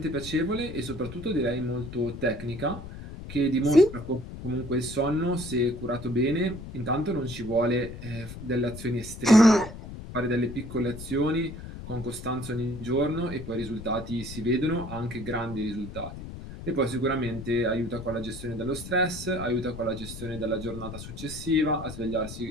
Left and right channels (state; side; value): noise; left; rumble, 11 dB below the sound